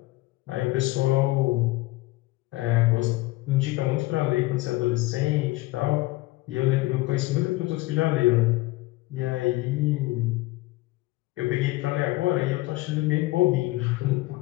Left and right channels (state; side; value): quieter; right; 20.0 dB